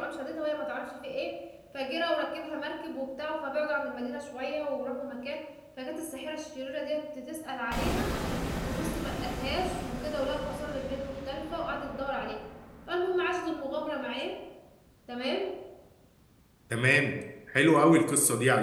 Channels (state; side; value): identical; both; correlation 1.00